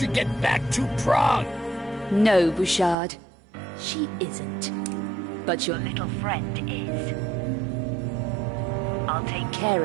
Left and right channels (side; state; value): left; drops out; at 3.0 s